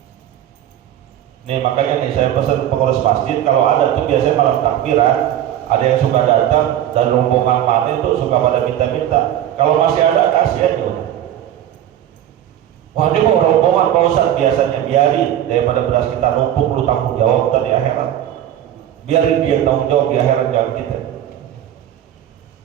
Nih makanya nih saya pesan pengurus masjid, kalau ada tuh biasanya malam takbiran, ada yang suka datang dan rombongan mana itu suka pada minta-minta. Kalau masih ada kasih aja. Wah ini mau rombongan Pak Ustadz, biasanya biarin, daripada beras kita numpuk lu tanggung jawab di akhirat. Biarin dia tanggung jawab di akhirat, jangan kita.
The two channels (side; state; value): left; quieter; 11.5 dB